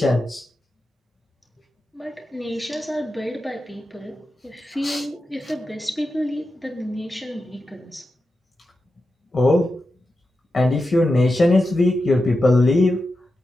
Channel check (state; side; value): normal; both; correlation 0.90